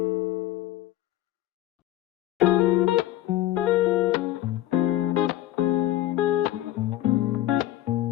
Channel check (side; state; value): right; quieter; 14.4 dB